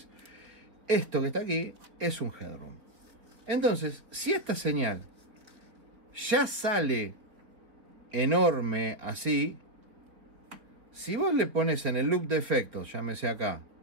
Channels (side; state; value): left; late; 3.8 ms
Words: Esto que está aquí es un headroom. Entonces, si esta señal ya sale enorme así, si vos le pones en el loop de efectos, llámese acá,